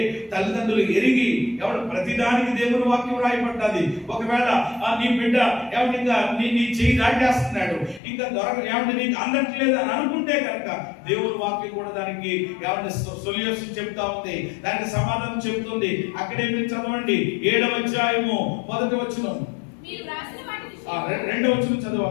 తల్లిదండ్రులు ఎరిగి ప్రతిదానికి దేవుని వాక్యం రాయబడ్డది. ఒకవేళ నీ బిడ్డ ఇంకా నీ చేయి దాటేస్తున్నాడు, ఇంకా నీకు అందట్లేదు అని అనుకుంటే కనుక దేవుని వాక్యం కూడా దానికి సొల్యూషన్ చెప్తా ఉంది, దానికి సమాధానం చెప్తుంది. అక్కడే మీరు చదవండి 7వ అధ్యాయము 1వ వచనం, 2వ వచనం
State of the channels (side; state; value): right; drops out; at 8.0 s